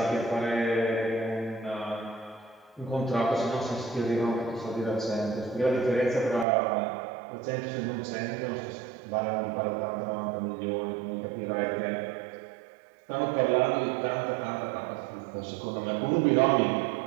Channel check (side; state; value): left; drops out; at 6.5 s